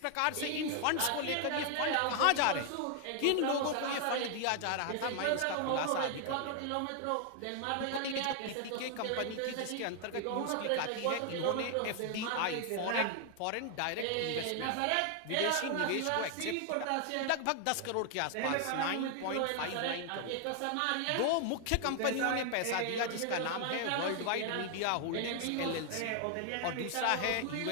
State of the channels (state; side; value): different; both; correlation 0.00